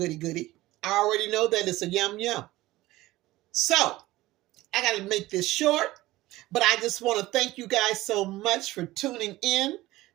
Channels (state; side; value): quieter; left; 17.7 dB